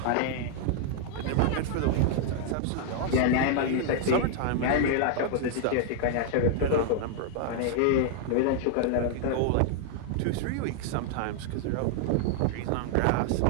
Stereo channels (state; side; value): different; both; correlation 0.00